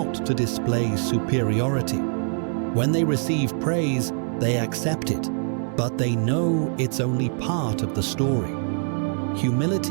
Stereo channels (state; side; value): silent; left; 63 dB below the other